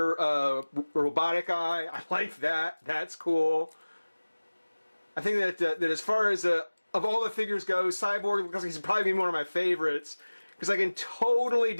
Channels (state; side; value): inverted; both; correlation -1.00